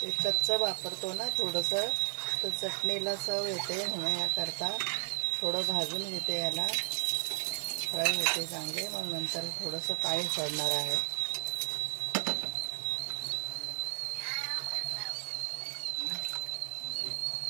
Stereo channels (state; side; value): silent; left; 55 dB below the other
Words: कच्चं वापरतो ना थोडंसं, तर चटणीला चव येते म्हणून याकरता थोडं भाजून घेते. याला फ्राय होते चांगले. मग नंतर थोडंसं पाणी सोडणार आहे.